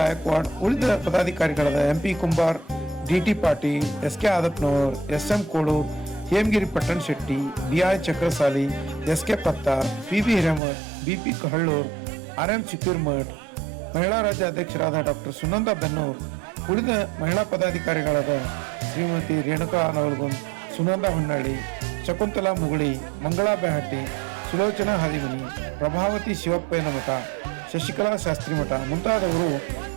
ಉಳಿದ ಪದಾಧಿಕಾರಿಗಳಾದ MP Kumbar, DT Patil, SK ಆದಪ್ನವರ್, SM ಕೋಡೂರ್, Hemagiri Pattan Shetty, BI Chakrasali, SK Pattar, PB Hiremath, BP ಕಹಳ್ಳೂರ್, RM ಚಿಕ್ಕೀರ್ಮಠ್, ಮಹಿಳಾ ರಾಜ್ಯ ಅಧ್ಯಕ್ಷರಾದ ಡಾಕ್ಟರ್ ಸುನಂದ ಬೆನ್ನೂರ್, ಉಳಿದ ಮಹಿಳಾ ಪದಾಧಿಕಾರಿಗಳಾದ ಶ್ರೀಮತಿ ರೇಣುಕಾ ನವಲ್ಗುಂದ್, ಸುನಂದ ಹೊನ್ನಳ್ಳಿ, ಶಕುಂತಲಾ ಮುಗುಳಿ, ಮಂಗಳಾ ಬೆಹಟ್ಟಿ, ಸುಲೋಚನಾ ಹಾದಿಮನಿ, ಪ್ರಭಾವತಿ ಶಿವಪ್ಪಯ್ಯನ ಮಠ, ಶಶಿಕಲಾ ಶಾಸ್ತ್ರಿ ಮಠ ಮುಂತಾದವರು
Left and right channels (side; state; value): left; drops out; at 10.6 s